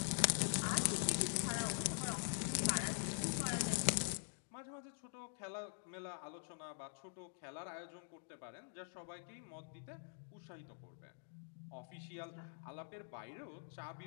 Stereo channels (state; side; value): silent; right; digital silence